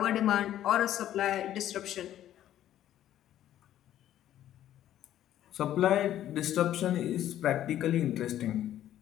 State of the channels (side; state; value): right; quieter; 12.1 dB